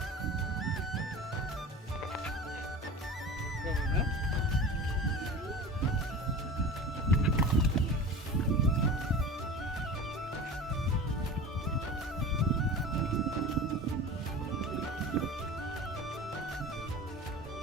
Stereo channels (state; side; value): normal; both; correlation 0.35